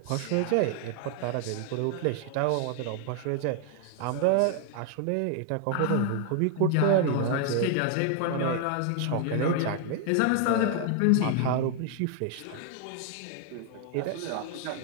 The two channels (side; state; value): both; different; correlation 0.00